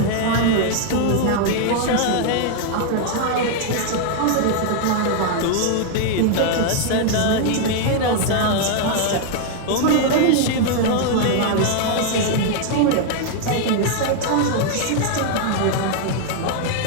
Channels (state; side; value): different; both; correlation 0.00